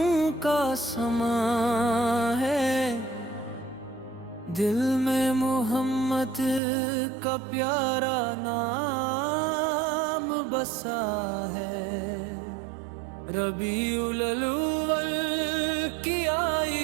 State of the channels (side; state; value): left; drops out; at 6.6 s